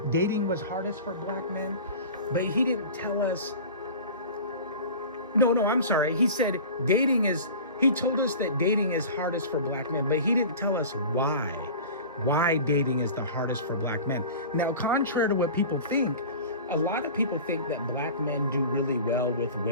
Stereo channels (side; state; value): both; inverted; correlation -0.37